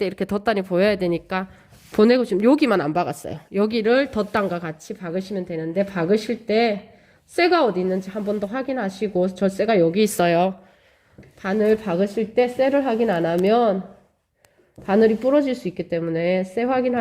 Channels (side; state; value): both; identical; correlation 1.00